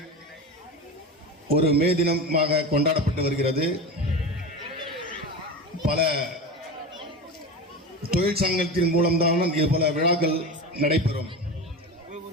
ஒரு மே தினமாக கொண்டாடப்பட்டு வருகிறது. பல தொழிற்சங்கத்தின் மூலம்தான் இது போல விழாக்கள் நடைபெறும்.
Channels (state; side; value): normal; both; correlation 0.25